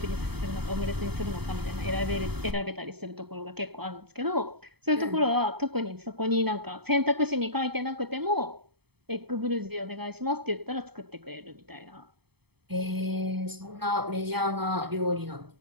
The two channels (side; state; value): left; late; 0.97 ms